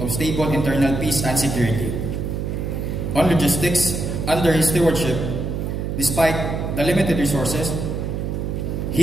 of stable internal peace and security. On logistics, under his stewardship, despite the limited resources,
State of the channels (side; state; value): right; noise; hum, 3 dB below the sound